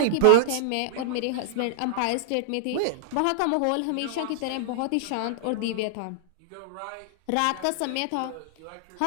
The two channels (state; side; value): different; both; correlation -0.01